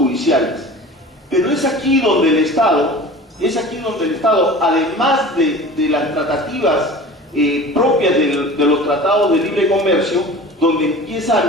Pero es aquí donde el Estado, además de las tratativas propias de los tratados de libre comercio, donde empieza a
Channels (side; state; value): both; normal; correlation 0.39